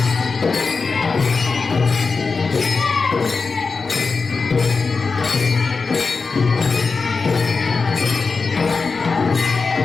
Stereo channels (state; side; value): quieter; right; 4.5 dB